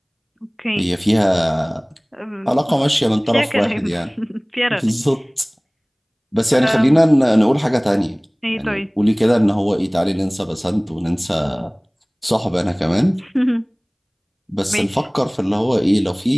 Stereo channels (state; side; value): identical; both; correlation 1.00